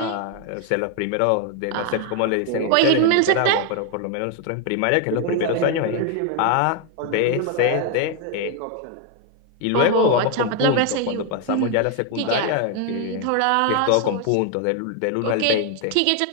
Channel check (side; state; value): both; different; correlation 0.01